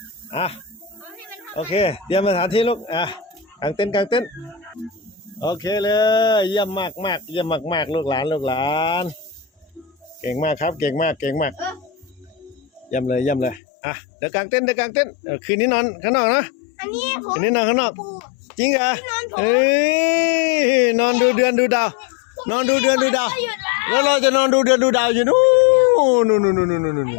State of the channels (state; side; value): drops out; right; at 13.6 s